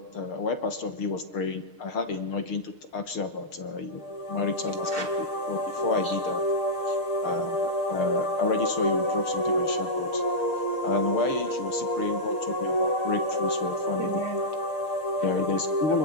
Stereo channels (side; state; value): right; late; 6.6 ms